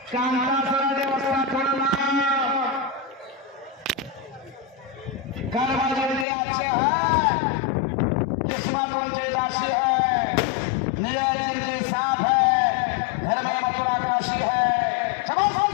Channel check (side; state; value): right; drops out; at 6.2 s